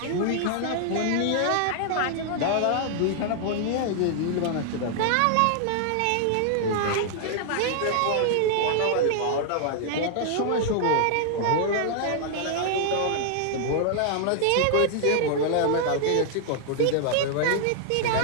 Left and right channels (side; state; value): both; different; correlation -0.01